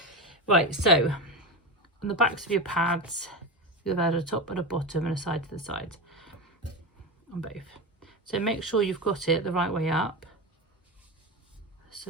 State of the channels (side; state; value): both; normal; correlation 0.19